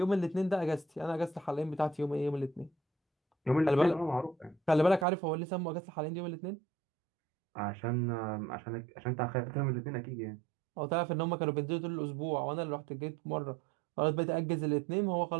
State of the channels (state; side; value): drops out; left; at 5.1 s